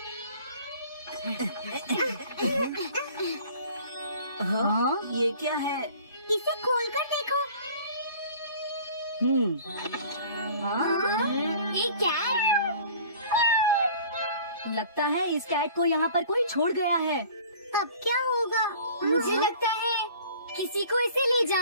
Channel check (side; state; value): both; inverted; correlation -0.47